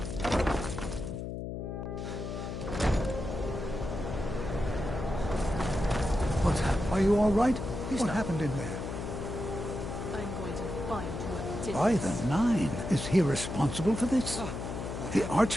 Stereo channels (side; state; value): left; noise; hum, 5 dB below the sound